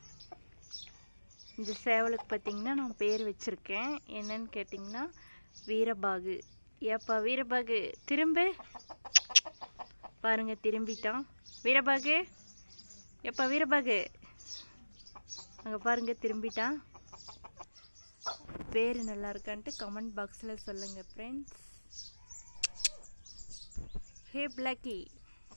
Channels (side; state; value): both; inverted; correlation -1.00